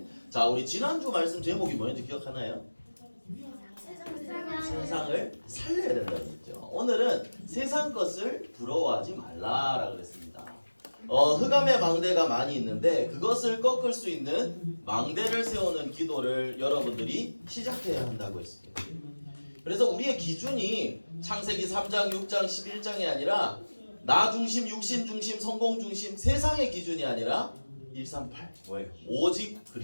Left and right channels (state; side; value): inverted; both; correlation -1.00